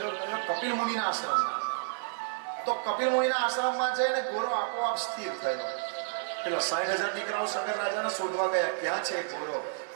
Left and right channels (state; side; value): silent; left; digital silence